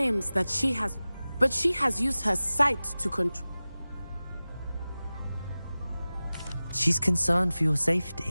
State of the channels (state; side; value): inverted; both; correlation -0.97